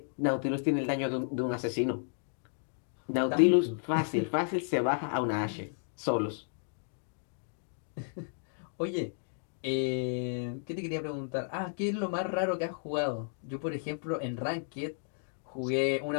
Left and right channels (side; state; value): right; silent; digital silence